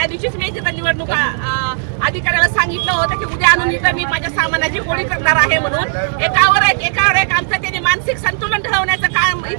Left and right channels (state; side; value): silent; left; 60 dB below the other